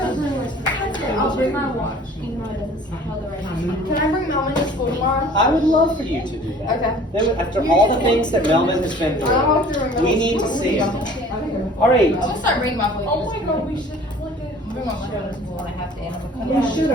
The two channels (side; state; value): both; normal; correlation 0.49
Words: I'll bring my watch, even though it doesn't tell the right time. Can I bring Melvin to school tomorrow? I would love for you to do that. Okay. Then, after all the things that Melvin has been I'll through, have to bring we Melvin need to school. see him. All right. I'm gonna start bringing my blanket. Oh my god, we should have like a. Bring my blanket. school and I have to animal We control. should